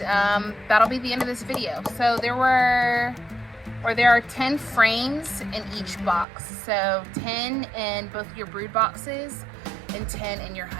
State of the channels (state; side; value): drops out; left; at 6.2 s